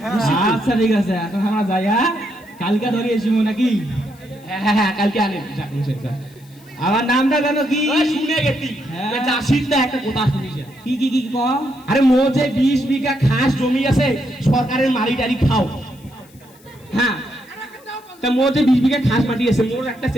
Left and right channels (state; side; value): noise; left; hiss, 28 dB below the sound